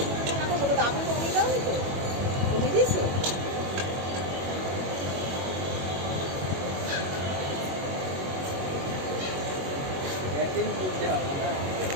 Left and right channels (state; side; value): late; left; 21 ms